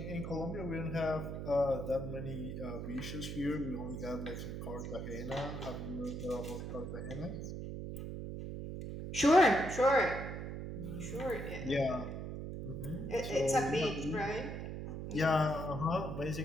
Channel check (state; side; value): noise; right; hum, 6 dB below the sound